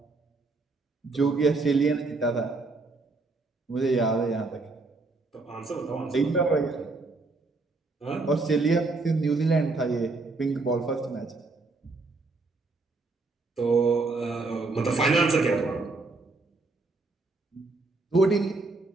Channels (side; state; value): left; quieter; 3.5 dB